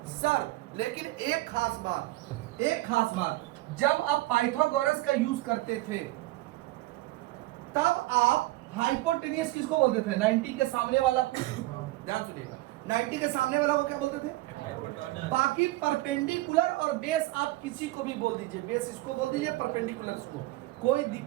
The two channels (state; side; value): quieter; left; 18.5 dB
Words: सर। लेकिन एक खास बात, जब आप पाइथागोरस का यूज करते थे तब आप हाइपोटेनियस किसको बोलते थे? 90 के सामने वाला। ध्यान सुनिएगा, 90 के सामने वाला वो क्या बोलते थे? बाकी परपेंडिकुलर और बेस आप किसी को भी बोल दीजिए, बेस इसको बोल दीजिए, परपेंडिकुलर इसको, कोई